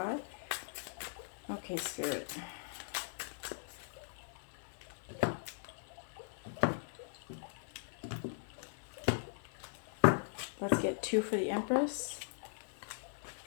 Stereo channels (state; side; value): silent; right; 51 dB below the other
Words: Okay, Spirit. Let's get 2 for the Empress,